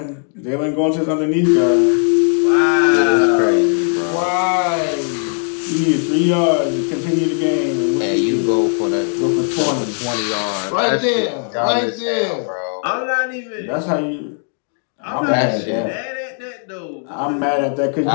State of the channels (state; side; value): silent; right; 61 dB below the other